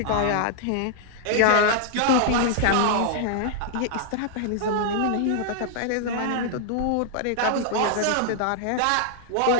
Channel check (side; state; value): both; different; correlation -0.01